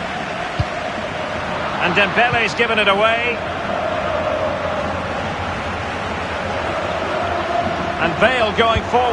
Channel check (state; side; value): identical; both; correlation 1.00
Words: And Dembele's given it away. And Bale going